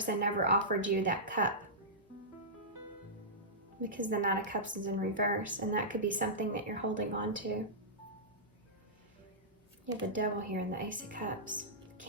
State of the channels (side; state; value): both; normal; correlation -0.16